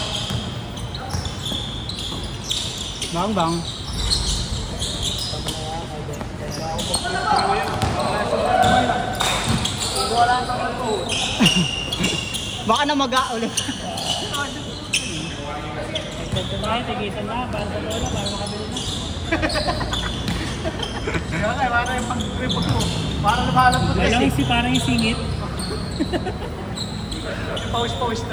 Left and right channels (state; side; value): identical; both; correlation 1.00